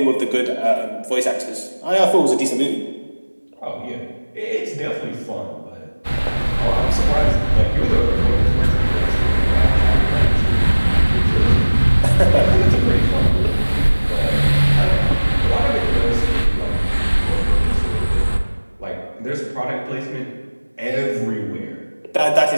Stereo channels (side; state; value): both; inverted; correlation -1.00